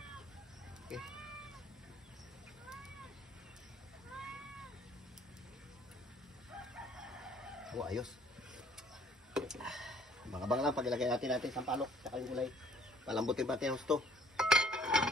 Okay. Oh, ayos. Bang-abang lang pag ilagay natin sampalok sa yung gulay. Palambutin pa natin ang gusto.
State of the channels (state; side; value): normal; both; correlation 0.57